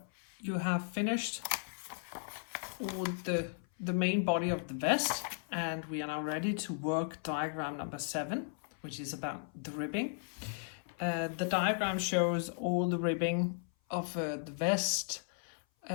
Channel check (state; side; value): silent; right; 54 dB below the other